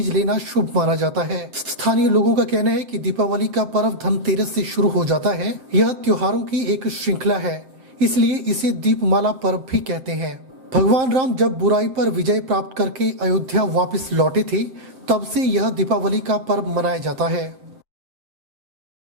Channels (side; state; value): left; late; 7.6 ms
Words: लेना शुभ माना जाता है। स्थानीय लोगों का कहना है कि दीपावली का पर्व धनतेरस से शुरू हो जाता है। यह त्योहारों की एक श्रृंखला है, इसलिए इसे दीपमाला पर्व भी कहते हैं। भगवान राम जब बुराई पर विजय प्राप्त करके अयोध्या वापस लौटे थे, तब से यह दीपावली का पर्व मनाया जाता है।